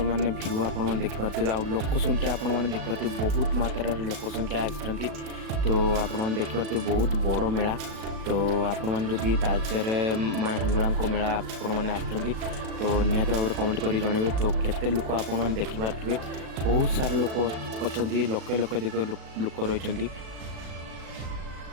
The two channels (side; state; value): left; late; 37 ms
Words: माने व्यू आप देखिए। आउ लोक संख्या आपने देखिए बहुत मात्रा लोक संख्या आसी। तो आपने देखिए बहुत बड़ मेला। तो आपड़ी तालचेर माँ हिंगुला मेला आपने आसुँच तो निहत भाव कमेंट कर जनइबे। तो केते लोक आपने देखिपे बहुत सारा लोक अच्छा लक्ष लक्ष लोक रही।